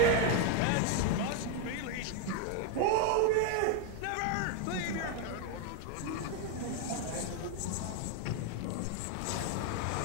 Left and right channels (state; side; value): different; both; correlation 0.01